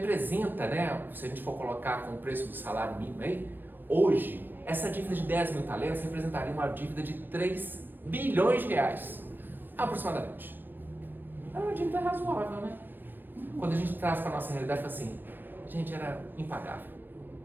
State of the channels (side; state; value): left; late; 0.093 ms